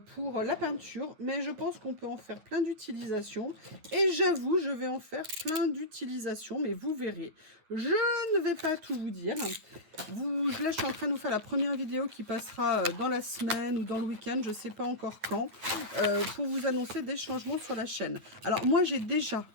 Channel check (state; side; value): late; left; 9.5 ms